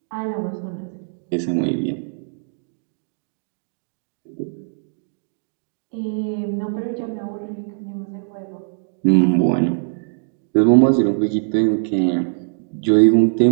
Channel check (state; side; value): silent; left; digital silence